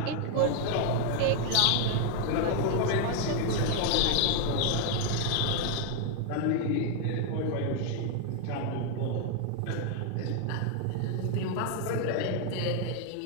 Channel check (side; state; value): both; different; correlation 0.00